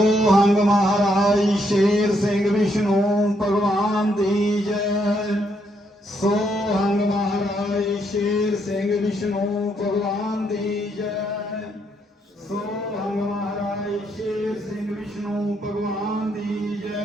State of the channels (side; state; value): both; normal; correlation 0.75